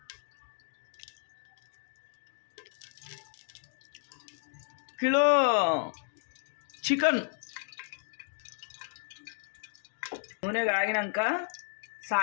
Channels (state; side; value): silent; right; digital silence